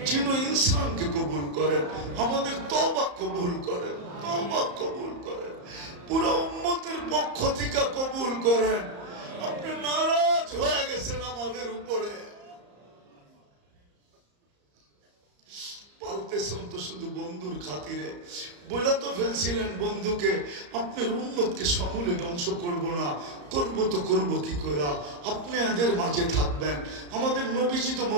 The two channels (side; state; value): left; late; 34 ms